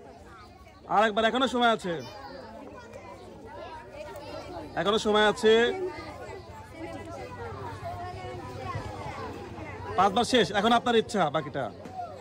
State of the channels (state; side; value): identical; both; correlation 1.00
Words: এখনো সময় আছে, এখনো সময় আছে। 5 বার শেষ। এখন আপনার ইচ্ছা বাকিটা।